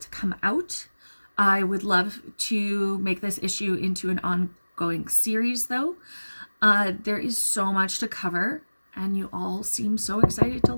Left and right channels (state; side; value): inverted; both; correlation -1.00